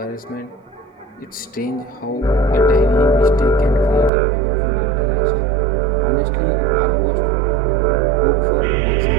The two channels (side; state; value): left; drops out; at 4.1 s